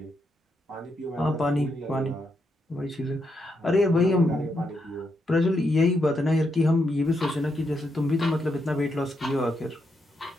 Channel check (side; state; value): both; normal; correlation 0.80